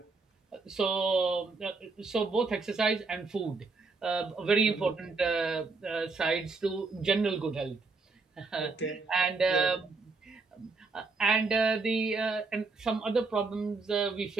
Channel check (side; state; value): left; quieter; 4.0 dB